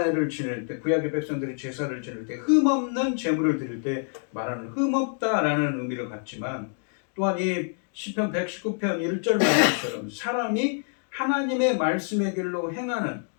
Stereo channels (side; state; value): right; silent; 57 dB below the other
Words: 지낼 때, 구약의 백성들이 제사를 지낼 때 흠없는 제물을 드릴 때 말하는 흠없다라는 의미를 갖지만, 또한 이 시편 119편 1절 말씀처럼 사람이 하나님의 말씀의 길로 행하는,